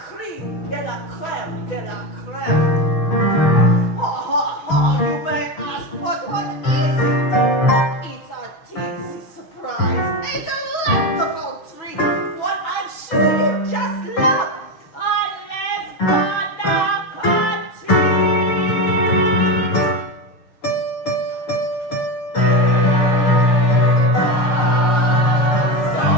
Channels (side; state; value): right; late; 6.3 ms